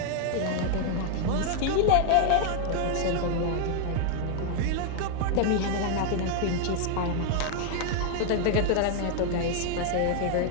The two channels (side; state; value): both; different; correlation 0.00